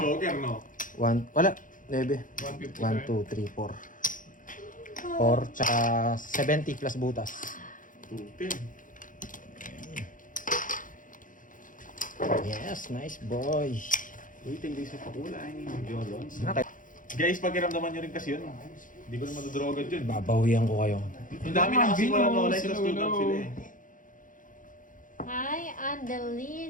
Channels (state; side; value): late; right; 0.38 ms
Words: no? Wala. 9. 1, 2, 3, 4. 4, tsaka 70 plus butas. 210. Yes, nice boy. Uy, tingin sa pakulay. Jolons. Okay. Guys, pakiramdaman nyo rin kasi yun. Hindi ko na madudrogan yun. Babawian ko kayo. Ang dami na kasi wala na online sa student sila eh. Hi,